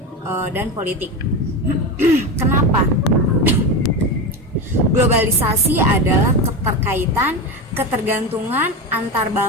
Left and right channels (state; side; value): normal; both; correlation 0.20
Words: dan politik. Kenapa? Globalisasi adalah ketergantungan antar